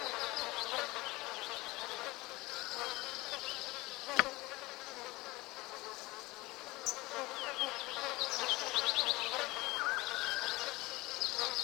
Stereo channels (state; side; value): quieter; right; 21.2 dB